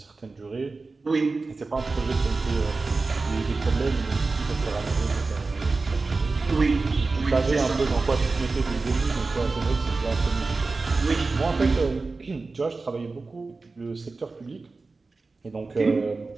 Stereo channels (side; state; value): left; quieter; 3.8 dB